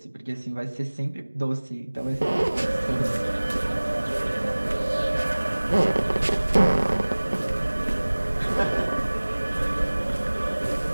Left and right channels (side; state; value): both; inverted; correlation -1.00